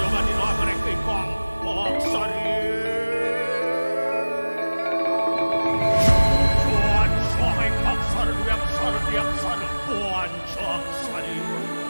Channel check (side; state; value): both; inverted; correlation -1.00